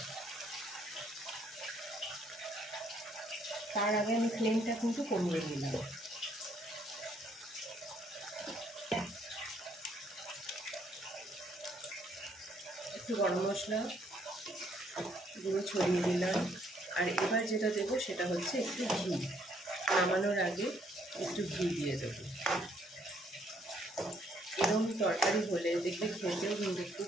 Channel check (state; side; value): normal; both; correlation 0.68